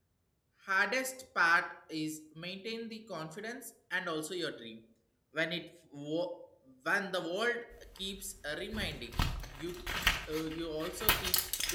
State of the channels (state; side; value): identical; both; correlation 1.00